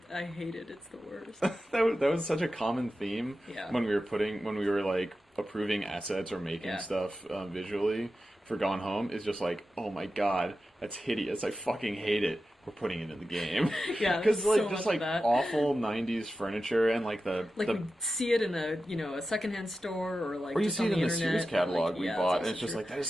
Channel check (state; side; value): normal; both; correlation 0.92